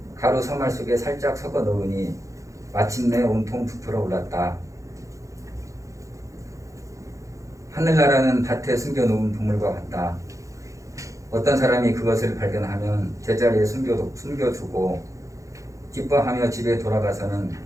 가루 서말 속에 살짝 섞어 넣으니 마침내 온통 부풀어 올랐다. 하늘나라는 밭에 숨겨놓은 보물과 같다. 어떤 사람이 그것을 발견하면 제자리에 숨겨두고 기뻐하며 집에 돌아가서는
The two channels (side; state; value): left; late; 0.15 ms